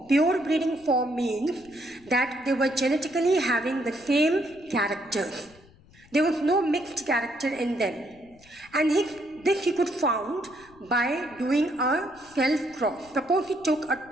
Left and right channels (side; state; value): left; noise; rumble, 26 dB below the sound